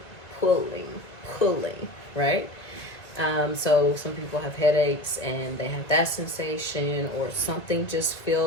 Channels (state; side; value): late; right; 2.1 ms